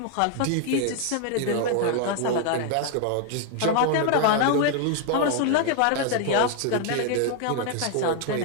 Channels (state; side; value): different; both; correlation 0.00